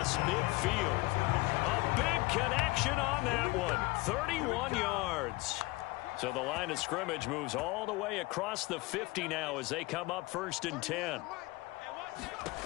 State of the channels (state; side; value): quieter; right; 22.2 dB